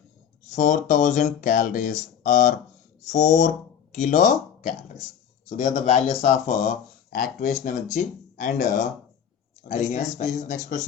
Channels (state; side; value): quieter; right; 8.4 dB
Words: 4000 calories or 4 kilocalories. So they are the values of activation energy and Arrhenius factor. This is next